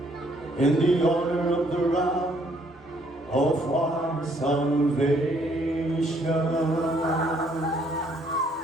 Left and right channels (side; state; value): both; normal; correlation 0.66